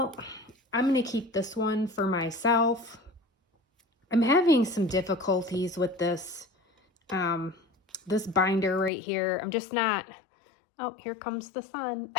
I'm going to keep this one for myself. I'm having some difficulties with this, this binder right here. I'm just not, oh, here comes the sun.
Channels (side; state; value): right; drops out; at 8.9 s